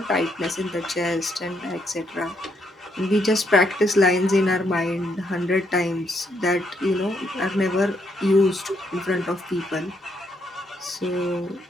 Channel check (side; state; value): both; normal; correlation 0.75